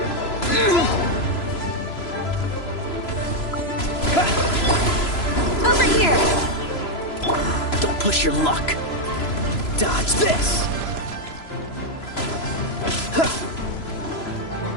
Over here! Don't push your luck. Dodge this!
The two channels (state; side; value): late; right; 3.0 ms